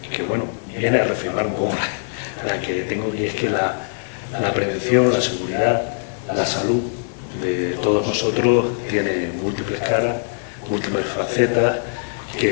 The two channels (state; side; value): silent; right; digital silence